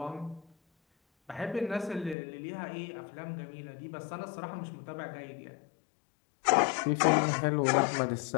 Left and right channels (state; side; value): drops out; right; at 2.1 s